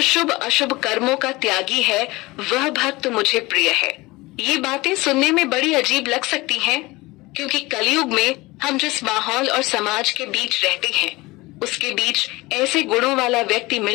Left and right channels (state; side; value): quieter; right; 21.5 dB